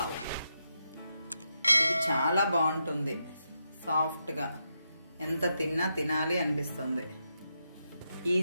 ఇది చాలా బాగుంటుంది, సాఫ్ట్గా, ఎంత తిన్నా తినాలి అనిపిస్తుంది.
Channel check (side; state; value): both; inverted; correlation -0.84